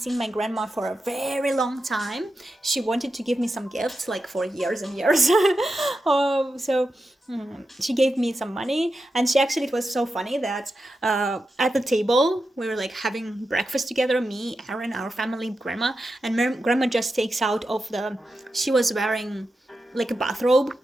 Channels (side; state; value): both; normal; correlation 0.90